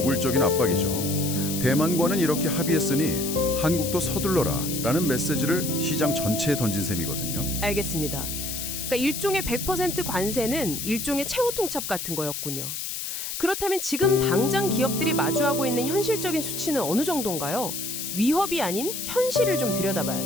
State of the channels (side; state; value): left; noise; hiss, 5 dB below the sound